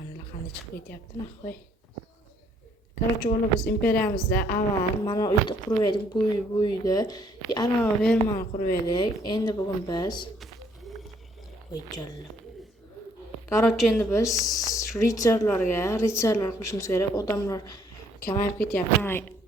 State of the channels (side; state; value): both; normal; correlation 0.65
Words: qanday chiqib ketyapti nahvoy. Короче, biz imperiyamizda avval mana uyda qurib edik, bu uyda arava fermani qurib edik. Endi bugun biz Короче, endi biz ritsarlar qilishimiz kerak. Odamlar kamayib ketyapti.